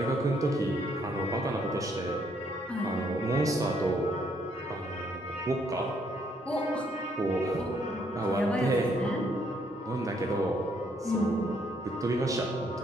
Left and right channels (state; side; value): normal; both; correlation 0.70